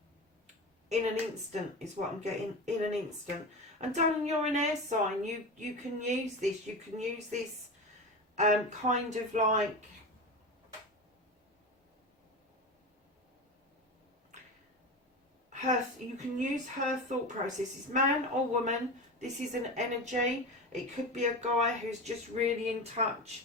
an instant, is what I'm getting, in an instant. And darling, you're an air sign. You can use this. You can use this kind of like you can use her thought processes, man or woman. This is an energy. It could be a guy who's just really in touch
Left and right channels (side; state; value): both; normal; correlation 0.25